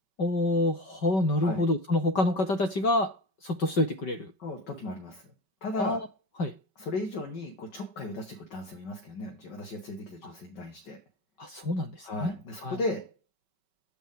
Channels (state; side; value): late; right; 5.2 ms